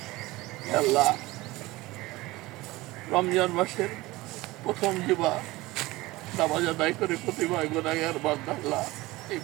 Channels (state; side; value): quieter; left; 20.1 dB